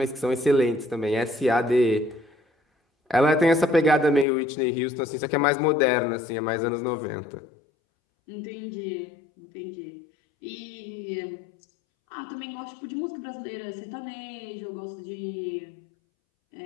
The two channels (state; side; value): drops out; right; at 4.2 s